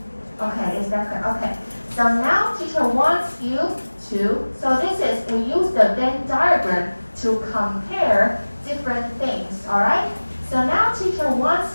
Okay, is that clear? Okay. So now teacher wants you to, so this is, we use the Venn diagram to compare different things, alright? So now teacher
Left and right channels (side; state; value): both; inverted; correlation -1.00